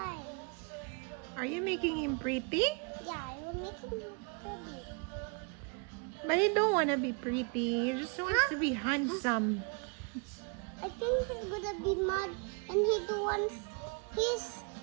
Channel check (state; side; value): quieter; left; 34.6 dB